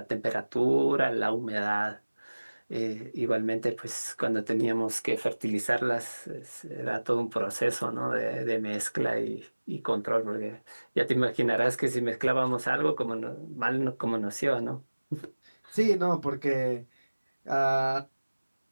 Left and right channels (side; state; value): both; inverted; correlation -1.00